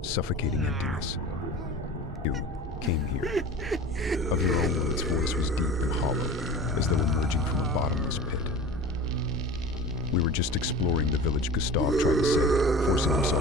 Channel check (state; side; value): normal; both; correlation 0.36